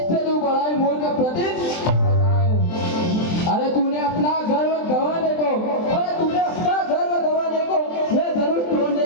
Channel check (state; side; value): late; right; 23 ms